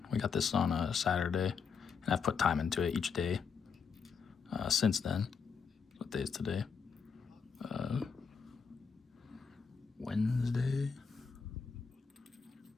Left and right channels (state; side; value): quieter; right; 5.8 dB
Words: We got this on a Saturday, And I've put time into it each day since then. What day is today? Wednesday.